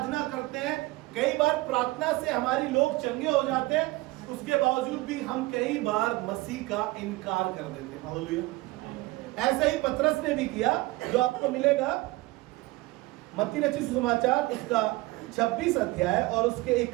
करते हैं, कई बार प्रार्थना से हमारी लोग चंगे हो जाते हैं, उसके बावजूद भी हम कई बार मसीह का इनकार कर देते हैं। हालेलुया। ऐसा ही पतरस ने भी किया, जो आपको मिलेगा मत्ती रचित सुसमाचार उसका 26 अध्याय और उसके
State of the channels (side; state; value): left; quieter; 20.9 dB